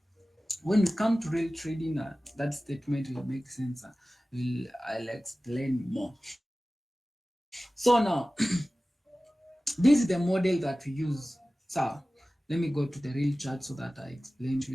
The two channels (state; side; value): normal; both; correlation 0.97